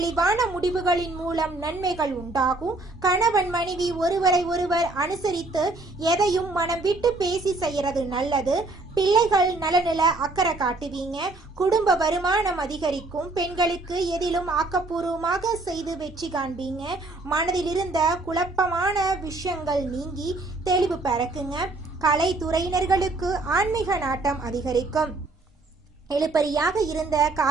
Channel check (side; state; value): left; quieter; 3.1 dB